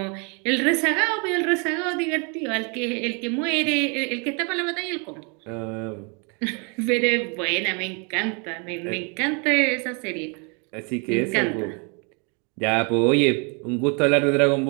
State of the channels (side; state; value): left; quieter; 34.3 dB